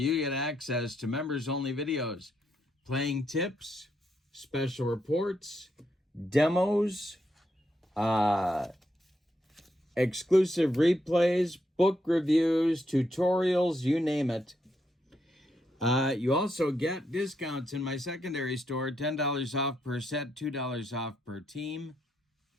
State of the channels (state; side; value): normal; both; correlation 0.79